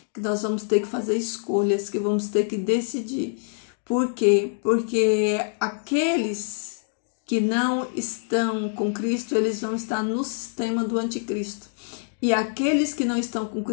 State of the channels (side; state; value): right; silent; digital silence